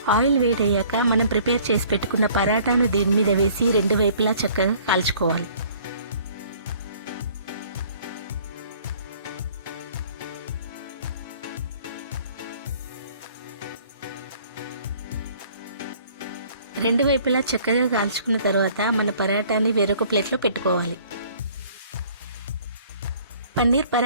ఆయిల్ వేడయ్యాక మనం ప్రిపేర్ చేసి పెట్టుకున్న పరాటాను దీని మీద వేసి రెండు వైపులా చక్కగా కాల్చుకోవాలి. రెండు వైపులా చక్కగా కాల్చుకున్న తర్వాత మన పరాటాని వేరొక ప్లేట్లో పెట్టుకోవాలి. పన్నీర్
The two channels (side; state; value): both; inverted; correlation -0.55